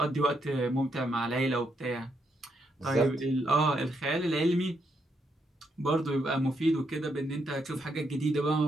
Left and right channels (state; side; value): normal; both; correlation 0.78